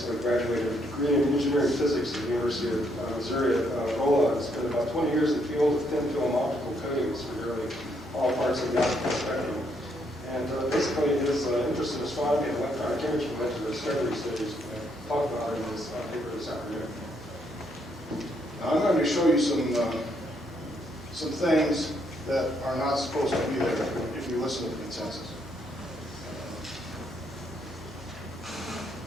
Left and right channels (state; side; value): normal; both; correlation 0.73